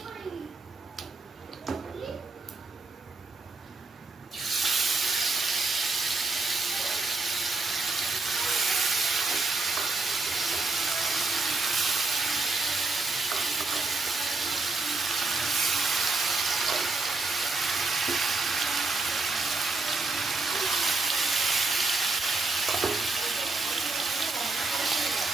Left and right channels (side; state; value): left; quieter; 3.6 dB